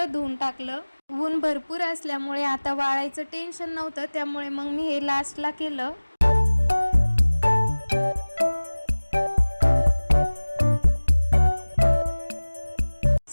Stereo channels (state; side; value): inverted; both; correlation -1.00